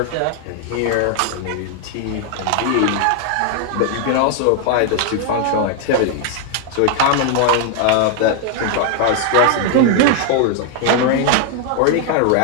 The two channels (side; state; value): both; different; correlation 0.00